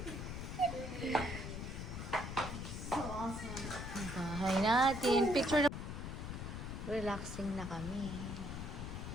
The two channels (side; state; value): left; noise; rumble, 6 dB below the sound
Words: So awesome. Ang bahay natin. Picture na. Relaxing na kami.